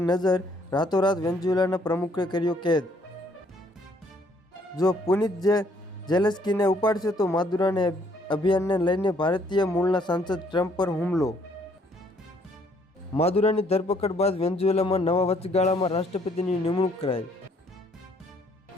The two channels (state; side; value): normal; both; correlation 0.65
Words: નજર. રાતોરાત વેનેઝુએલાના પ્રમુખે કર્યો કેદ. જો પુનિત ઝેલેન્સ્કીને ઉપાડશે તો માદુરાને અભિયાનને લઈને ભારતીય મૂળના સાંસદ ટ્રમ્પ પર હુમલો. માદુરાની ધરપકડ બાદ વેનેઝુએલામાં નવા વચગાળામાં રાષ્ટ્રપતિની નિમણૂક કરાઈ.